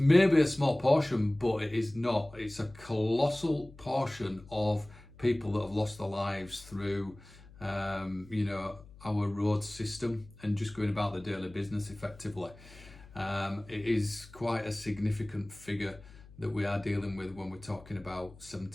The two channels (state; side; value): noise; left; hum, 21 dB below the sound